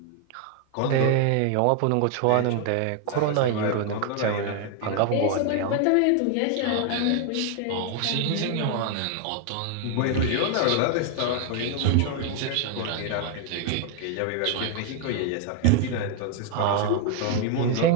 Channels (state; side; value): different; both; correlation 0.00